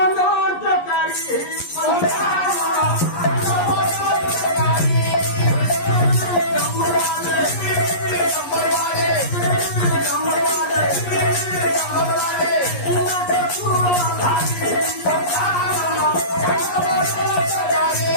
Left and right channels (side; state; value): right; late; 11 ms